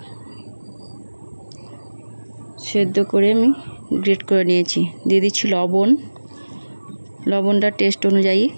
সেদ্ধ করে আমি গ্রেট করে নিয়েছি। দিয়ে দিচ্ছি লবণটা টেস্ট অনুযায়ী।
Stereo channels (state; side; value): inverted; both; correlation -1.00